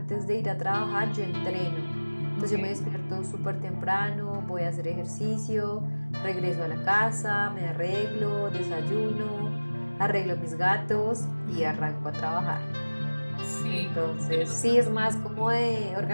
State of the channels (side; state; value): both; inverted; correlation -1.00